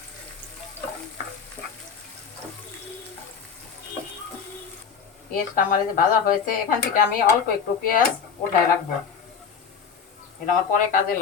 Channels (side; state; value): right; quieter; 6.4 dB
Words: পেঁয়াজটা আমার এই যে ভাজা হয়েছে। এখান থেকে আমি অল্প একটু পেঁয়াজ উঠায় রাখবো, এটা আমার পরে কাজে